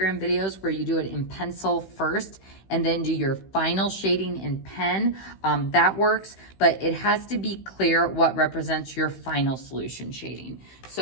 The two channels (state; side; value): late; right; 16 ms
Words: videos where you do it in pencil first and then do your final shading in pen. That works, but it has to be clear what represents your final solution shading.